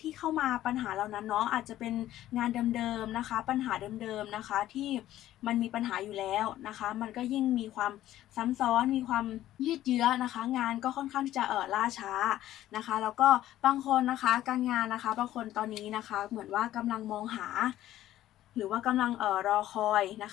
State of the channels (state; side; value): quieter; right; 13.6 dB